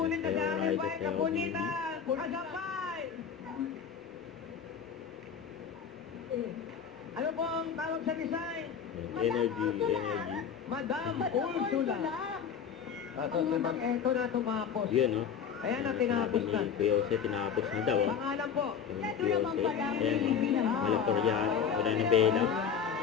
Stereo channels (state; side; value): quieter; right; 7.2 dB